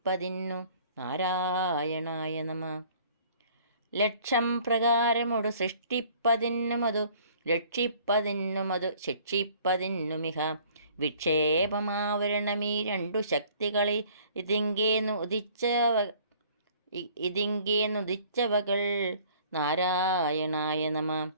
നാരായണായ നമ. ലക്ഷം പ്രകാരമൊടു സൃഷ്ടിപ്പതിന്നുമതു രക്ഷിപ്പതിന്നുമതു ശിക്ഷിപ്പതിന്നുമിഹ വിക്ഷേപമാവരണമീ രണ്ടു ശക്തികളെ ഇതിങ്കേന്നുദിച്ചവകൾ നാരായണായ നമ.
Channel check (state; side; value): inverted; both; correlation -0.55